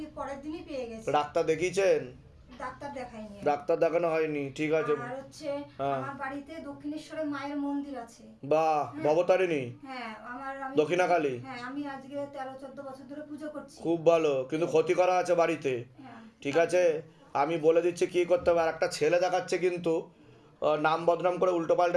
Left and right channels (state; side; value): identical; both; correlation 1.00